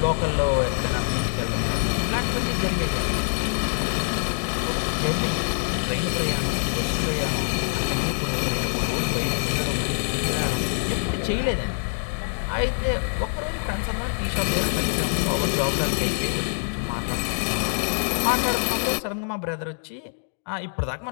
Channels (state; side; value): silent; right; digital silence